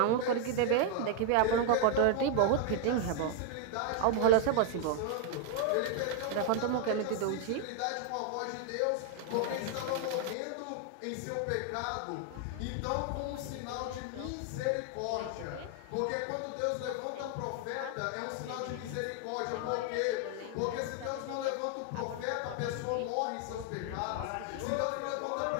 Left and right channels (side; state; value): both; different; correlation 0.00